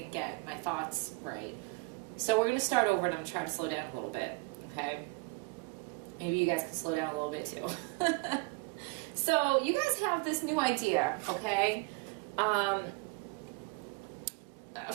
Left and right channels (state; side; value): quieter; left; 27.4 dB